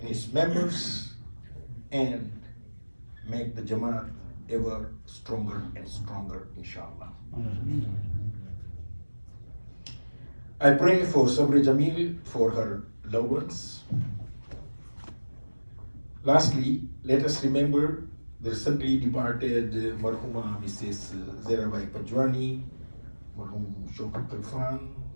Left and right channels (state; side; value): inverted; both; correlation -1.00